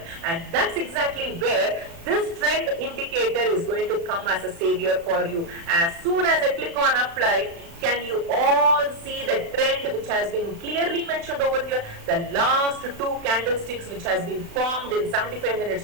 And that's exactly where this trend indicator is going to come as a savior for you. As soon as I click on apply, can you all see the trend which has been clearly mentioned over here? The last two candlesticks which has been formed in 75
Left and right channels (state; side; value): late; left; 36 ms